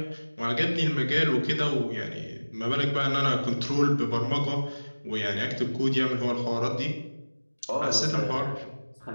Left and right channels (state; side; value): inverted; both; correlation -1.00